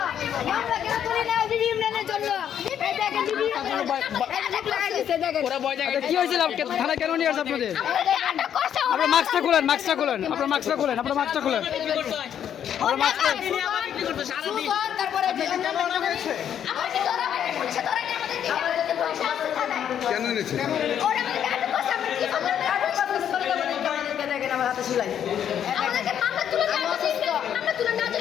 মামলা কেন তুলে নেওয়া বিবি ইমরানের জন্য এই দেখেন বিবি ওরা ভয় দেখায় কি হয়েছিল থানা কেন নিয়ে আসছে আপনাদের আপনারা মাস্কটা খুলেন আপনারা মাস্কটা খুলেন আপনারা মাস্কটা খুলেন তারপরে কেন এনেছে দেখেন আমার হাতে সেলাই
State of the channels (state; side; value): quieter; right; 9.4 dB